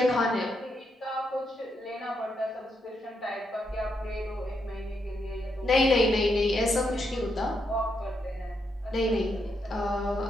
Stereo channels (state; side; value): normal; both; correlation 0.80